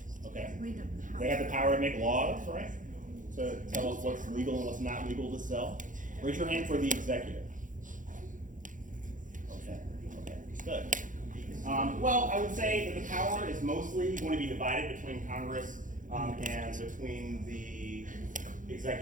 Okay. They have the power to make laws, right? To tell us what's legal and what's not legal to sell. Raise your hand for the executive. Okay. Good. Well, I would say that the power is mostly going to be divided between Congress and between the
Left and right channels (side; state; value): left; late; 0.38 ms